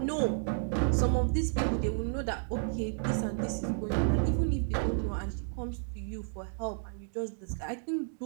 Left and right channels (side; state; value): left; silent; digital silence